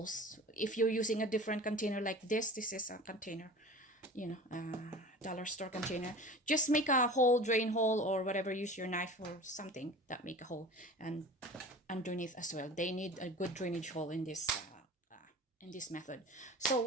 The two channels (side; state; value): both; normal; correlation 0.37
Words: If you're using a different container like this is a container, dollar store container, just make a hole, drain hole or whatever, use your knife or something that make a hole. And underneath as well, they need a good drainage hole in this method. So